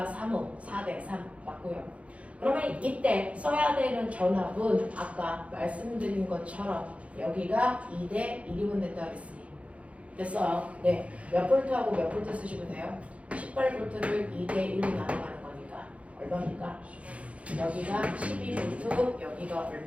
3옴, 4대 3 맞고요. 그러면 이때 써야 되는 전압은 아까 말씀드린 것처럼 여기가 2대 1이면 된다 그랬으니 됐어요. 네, 몇 볼트하고 몇 볼트 쓰시면 돼요? 18볼트를 2대 1로 나눠가는 거니까 얼마입니까? 여기가 12볼트, 여기가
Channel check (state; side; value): late; left; 0.064 ms